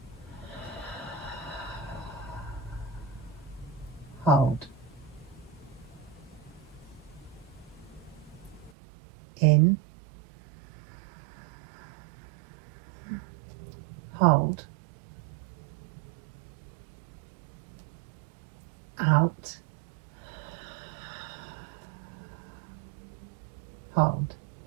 hold, in, hold, out, hold.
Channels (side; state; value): left; drops out; at 8.7 s